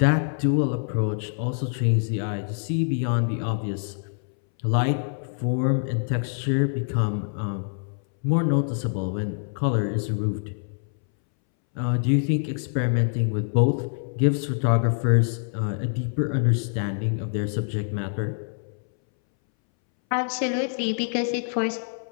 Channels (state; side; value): silent; right; 62 dB below the other